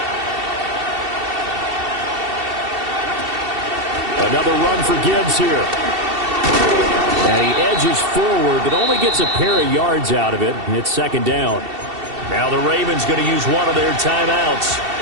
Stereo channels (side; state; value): left; late; 2.7 ms